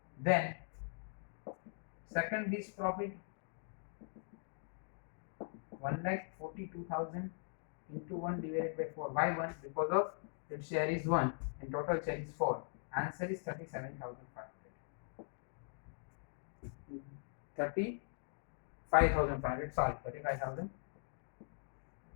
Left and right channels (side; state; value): right; silent; digital silence